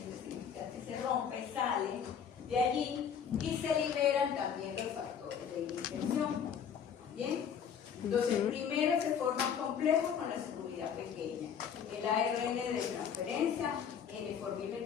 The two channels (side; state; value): right; quieter; 7.7 dB